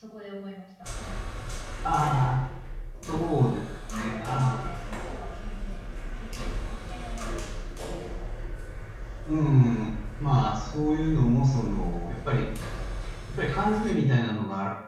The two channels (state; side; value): identical; both; correlation 1.00